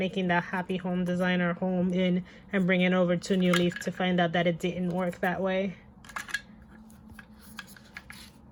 the Happy Home Designer home in and bringing over to New Leaf to find out that it didn't work that way.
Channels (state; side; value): identical; both; correlation 1.00